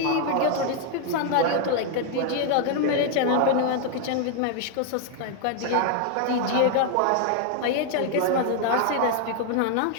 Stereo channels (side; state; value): both; different; correlation 0.00